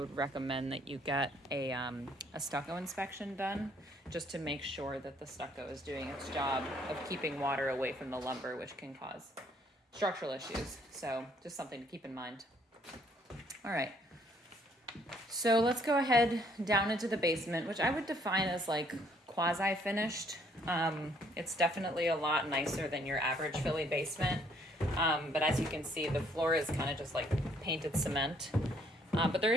recommend that you get a stucco inspection done just to make sure that the stucco is doing its job of keeping water away from the lumber, which can cause structural issues. So just something to keep in mind. All right. So let's go ahead down into the basement, which I would define as like quasi-finished. It's definitely a lot nicer than your average Philly basement. But as you can see, the floor is kind of just like painted cement. But there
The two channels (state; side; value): normal; both; correlation 0.65